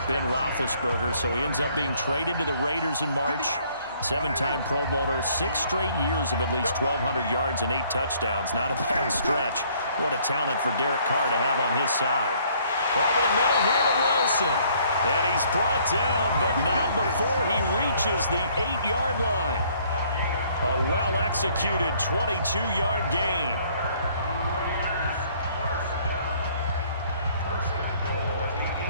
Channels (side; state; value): both; inverted; correlation -0.62